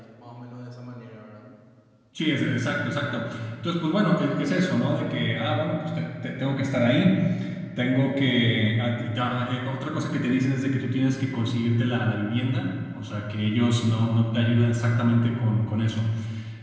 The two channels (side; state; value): both; identical; correlation 1.00